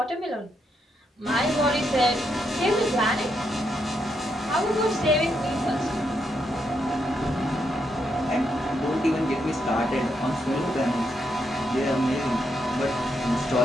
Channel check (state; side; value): normal; both; correlation 0.80